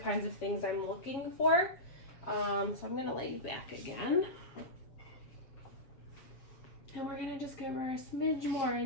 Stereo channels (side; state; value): right; late; 7.5 ms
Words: of things I'm looking for. So I'm gonna lay you back again. And we're gonna just give her a smidge more